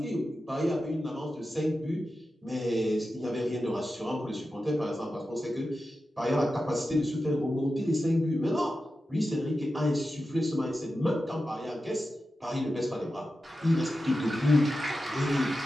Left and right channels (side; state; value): both; normal; correlation 0.92